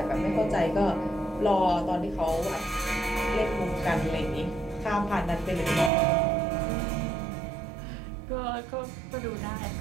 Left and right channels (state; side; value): drops out; left; at 5.9 s